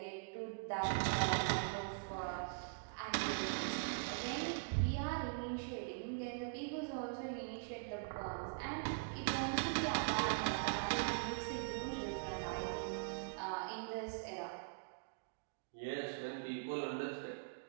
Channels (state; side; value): quieter; left; 38.9 dB